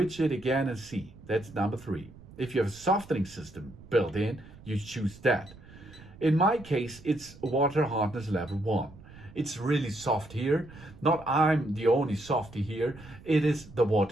it again and see. That's number 3. If you have a softening system built in, you choose that. In my case, it's water hardness level 1. It's really soft here. Not I'm the only softy here. It is the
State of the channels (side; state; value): right; noise; rumble, 20 dB below the sound